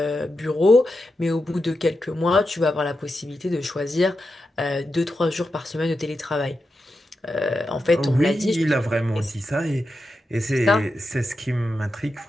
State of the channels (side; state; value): both; normal; correlation 0.89